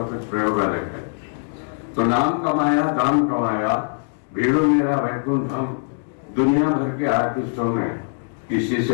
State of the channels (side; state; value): right; silent; digital silence